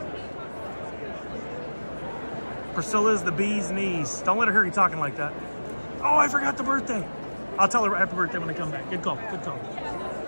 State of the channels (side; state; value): both; inverted; correlation -1.00